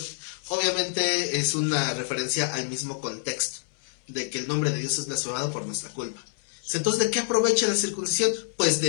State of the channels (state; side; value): silent; right; 60 dB below the other